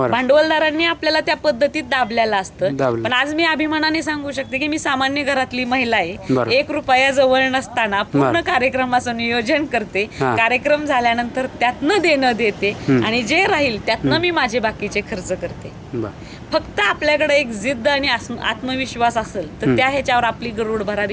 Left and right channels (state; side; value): identical; both; correlation 1.00